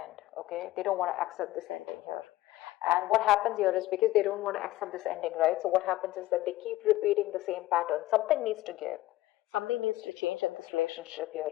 okay? They don't want to accept this ending here. And what happens here is because they don't want to accept this ending, right? So what happens is that they keep repeating the same pattern. Something needs to give. Something needs to change in this relationship here.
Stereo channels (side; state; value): right; quieter; 16.5 dB